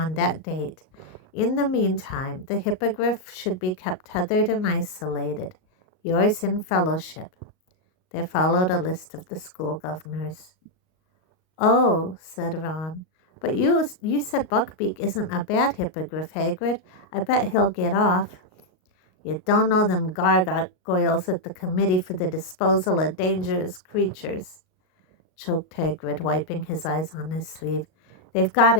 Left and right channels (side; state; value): right; late; 38 ms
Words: that date. In the meantime, the hippogriff should be kept tethered and isolated. Yours in fellowship." There followed a list of the school governors. "Oh," said Ron, "but you said Buckbeak isn't a bad hippogriff, Hagrid. I bet he'll get off." "You don't know them gargoyles at the Committee for the Disposal of Dangerous Creatures," choked Hagrid, wiping his eyes on his sleeve. "They've got